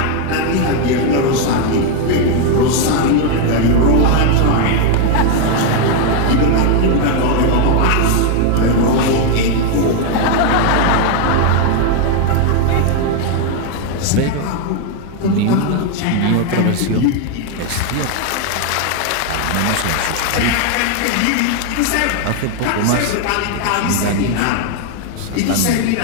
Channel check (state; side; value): different; both; correlation 0.01